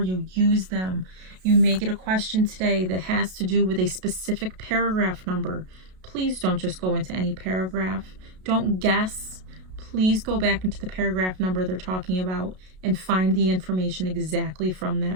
you. Use them. You may get a question today that has to do with a specific paragraph number. Please don't just go into any paragraph. Don't guess. Please go back into the paragraph number they're talking about and find the information exactly from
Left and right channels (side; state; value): left; late; 32 ms